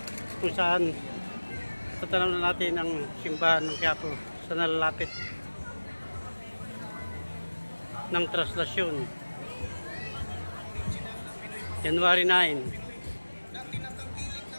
kung saan tatanaw na natin ang simbahan ng Quiapo sa nalalapit ng translasyon. January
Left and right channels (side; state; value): both; inverted; correlation -1.00